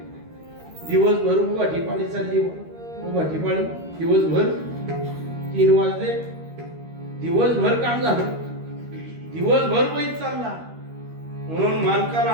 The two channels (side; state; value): left; late; 13 ms